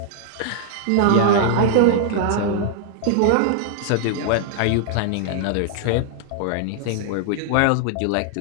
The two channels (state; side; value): different; both; correlation -0.01